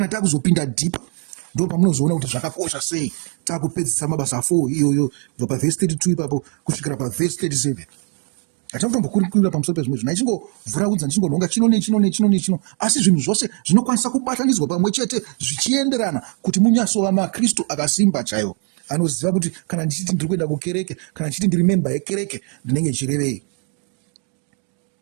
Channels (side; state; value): left; quieter; 38.1 dB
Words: takuzopinda deeper ndo pamunozoona kuti zvakakosha sei takupedzisa mabasa 4 iyoyo kubva pavhesi 32 ipapo kusvikira pavhesi 37. Hatakutombokurira pamusoro pezvimwe zvinhu, ichingovhuraudza ndichingonhonga chino, asi zvinhu zvose zvinokwanisa kubatanidzwa pamwe chete zvichienderana kuti munyasova maKristu akasimba chaiwo, anoziva kuti kana ndichiti ndiri kuenda kukereke, kana ndichiti ndiri memba yekereke, ndinenge ndichirevei.